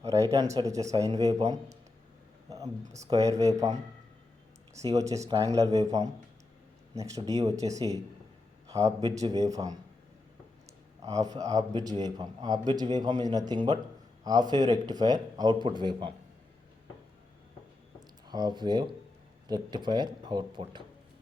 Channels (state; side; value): quieter; right; 3.1 dB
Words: Right hand side వచ్చేసి sine waveform, square waveform, C వచ్చేసి triangular waveform, next D వచ్చేసి half bridge wave form. Half bridge wave form. Half bridge wave form is nothing but half wave rectifier output waveform. Half wave rectifier